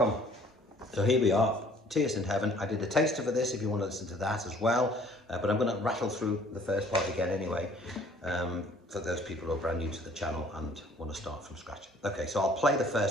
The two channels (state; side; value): normal; both; correlation 0.55